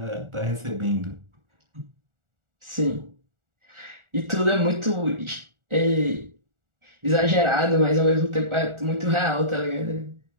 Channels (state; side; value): late; left; 1.4 ms